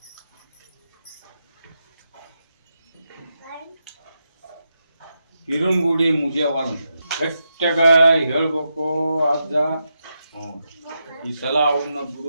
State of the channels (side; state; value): both; inverted; correlation -0.85